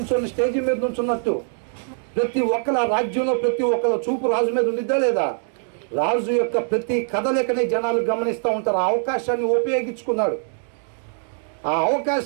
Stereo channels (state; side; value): silent; left; 64 dB below the other